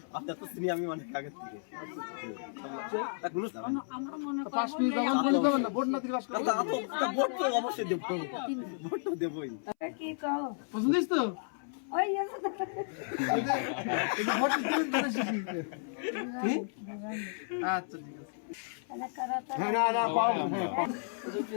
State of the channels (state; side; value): silent; right; 56 dB below the other